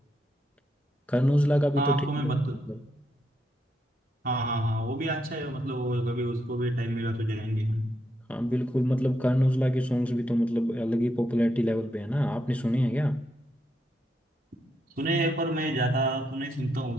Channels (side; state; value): both; normal; correlation 0.80